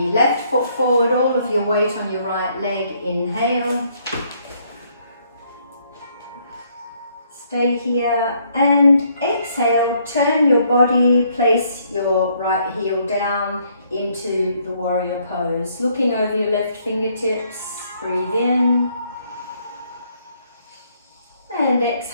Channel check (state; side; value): inverted; both; correlation -0.68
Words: left foot forward, all of your weight on your right leg, inhale. Stay here and exhale, turn your body, place your right heel down into the warrior pose. Looking over your left fingertips, breathe in. And